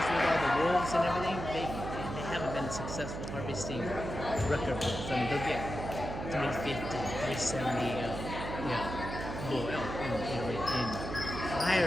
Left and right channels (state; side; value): noise; right; hum, 6 dB below the sound